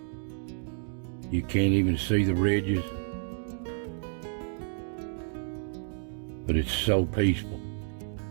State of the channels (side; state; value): left; silent; digital silence